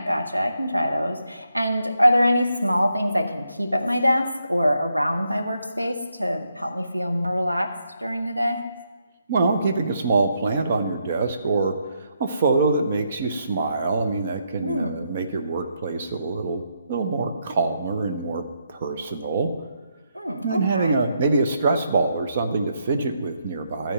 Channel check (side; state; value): both; inverted; correlation -0.79